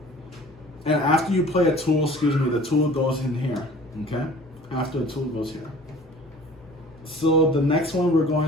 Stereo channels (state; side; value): normal; both; correlation 0.47